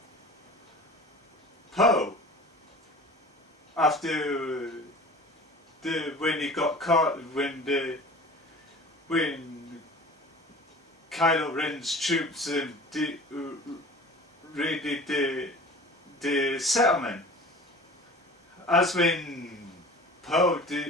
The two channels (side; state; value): both; normal; correlation 0.41